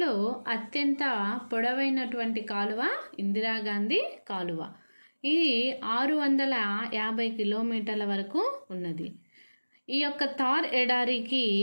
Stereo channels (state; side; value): inverted; both; correlation -1.00